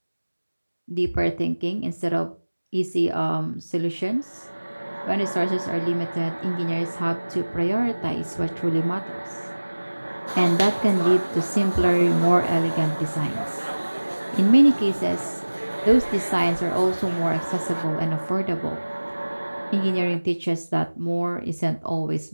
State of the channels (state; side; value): inverted; both; correlation -1.00